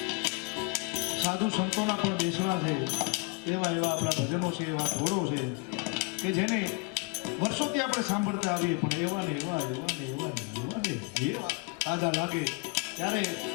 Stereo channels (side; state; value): right; quieter; 31.4 dB